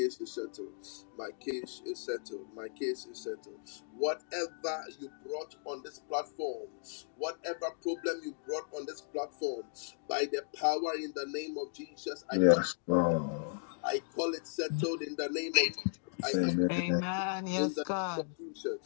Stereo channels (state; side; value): silent; right; digital silence